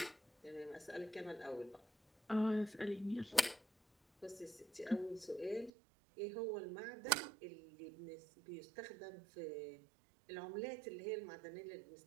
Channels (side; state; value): left; drops out; at 5.7 s